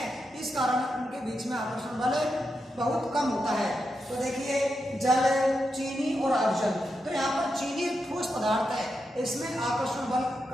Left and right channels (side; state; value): both; normal; correlation 0.86